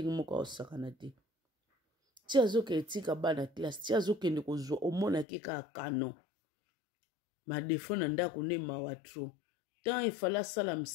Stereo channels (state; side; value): drops out; right; at 5.2 s